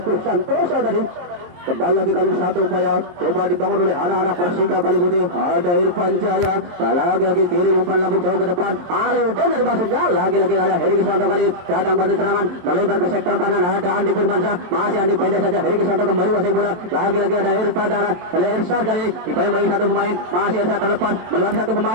Santoso tadi. Kembali lagi kali satu upaya coba dibangun oleh anak-anak Persika Kaliputih. Ada Irfan Jaya, lagi-lagi kiri umpan lambung jauh ke depan. Halidin dari maksudnya lagi-lagi ada Heri Krisanto kali datang bantu serangan melebar ke sektor kanan. Ada Andi Firmansyah, masih Andi pendek saja. Heri Krisanto kembali wasai bola. Lagi-lagi ada Irfan Dana, oleh Irsyad kali dibayang satu pemain, masih Irsyad terlepas melewati satu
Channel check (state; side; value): late; left; 23 ms